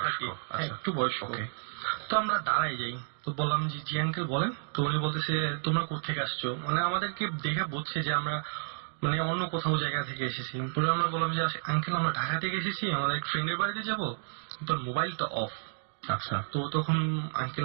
একটু বয়স্ক। তো আমরা দাঁড়াই যাই, তো বললাম যে জি আঙ্কেল বলেন। তো উনি বলতেছে তোমরা কোথেকে আসছো, মানে আমাদেরকে দেখে বুঝছে যে আমরা মানে অন্য কোথাও জায়গা থেকে এসেছি। পরে আমরা বললাম যে আঙ্কেল আমরা ঢাকা থেকে এসেছি, আমাদের এক ফ্রেন্ডের বাড়িতে যাবো, তোর মোবাইলটা অফ। আচ্ছা। তো তখন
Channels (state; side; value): silent; left; 57 dB below the other